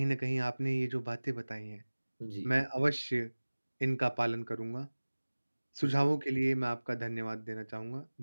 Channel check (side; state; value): both; inverted; correlation -1.00